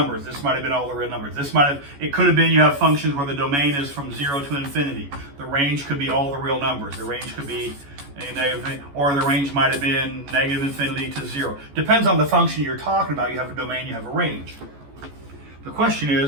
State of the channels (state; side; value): late; left; 14 ms